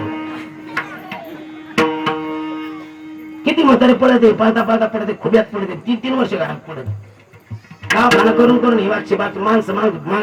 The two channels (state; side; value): identical; both; correlation 1.00